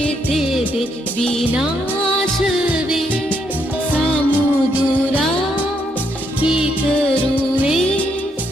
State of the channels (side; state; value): both; normal; correlation 0.75